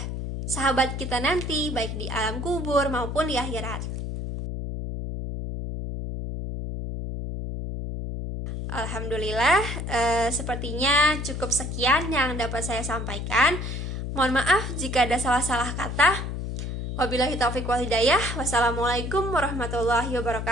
sahabat kita nanti, baik di alam kubur maupun di akhirat. Alhamdulillah, sepertinya cukup sekian yang dapat saya sampaikan. Mohon maaf jika ada salah-salah kata. Wabillahi taufiq wal hidayah. Wassalamualaikum warahmatullahi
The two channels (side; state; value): left; noise; hum, 4 dB below the sound